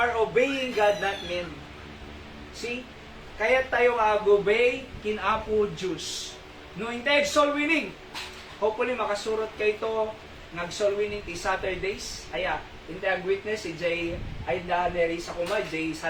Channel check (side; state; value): both; identical; correlation 1.00